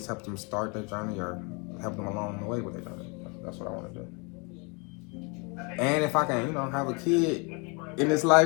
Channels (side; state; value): right; quieter; 32.1 dB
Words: help them start their journey or help them along the way with their journey. That's what I want to do. And if I can, have a kid in this